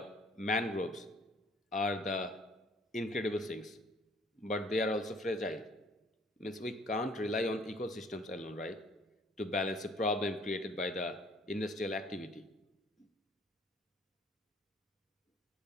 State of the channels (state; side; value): normal; both; correlation 0.58